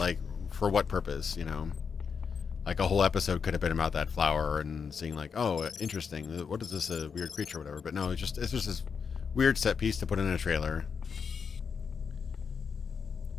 for what purpose, you know? Like, a whole episode could have been about that flower and seeing like, oh, interesting. What is this, a weird creature or whatever? But no, it's just this weird set piece to put in a trailer.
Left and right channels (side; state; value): right; quieter; 6.1 dB